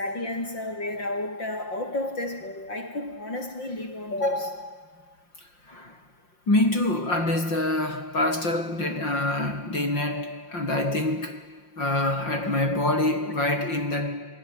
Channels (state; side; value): late; right; 5.7 ms